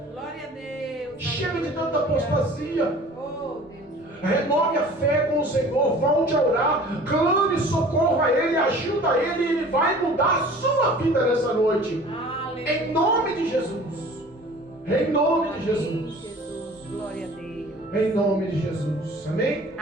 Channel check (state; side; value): normal; both; correlation 0.46